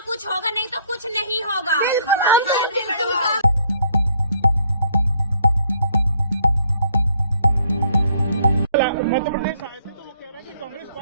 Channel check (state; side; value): inverted; both; correlation -0.65